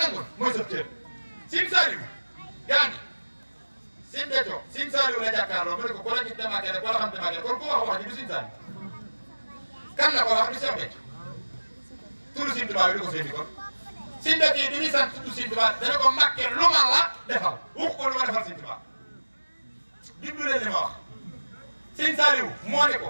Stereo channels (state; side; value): inverted; both; correlation -1.00